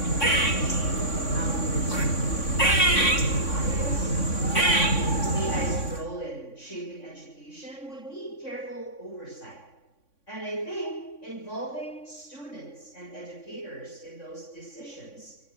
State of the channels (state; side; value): late; right; 3.6 ms